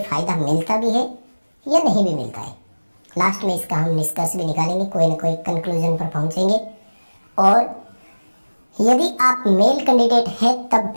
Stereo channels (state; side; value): inverted; both; correlation -1.00